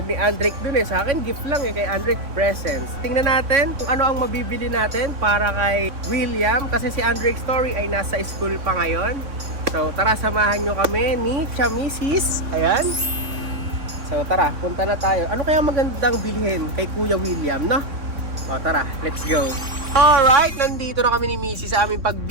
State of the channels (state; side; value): late; left; 3.6 ms